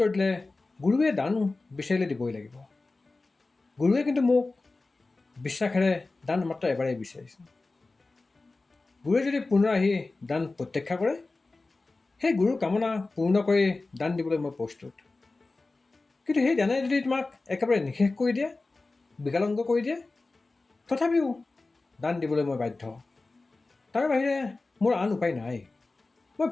দিলে, গুৰুৱে দান বিচাৰিলে দিবই লাগিব। গুৰুৱে কিন্তু মোক বিশ্বাসেৰে দান মাত্ৰ এবাৰেই বিচাৰিছে। গুৰুৱে যদি পুনৰ আহি দান প্ৰত্যাখ্যা কৰে, সেই গুৰুৰ কামনা পূৰ্ণ কৰি দান দিবলৈ মই প্ৰস্তুত। কিন্তু সেই দানে যদি তোমাক একেবাৰে নিষেধ কৰি দিয়ে, বিকলাংগ কৰি দিয়ে, তথাপিও দান দিবলৈ মই বাধ্য। তাৰ বাহিৰে মোৰ আন উপায় নাই। মই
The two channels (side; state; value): right; quieter; 3.4 dB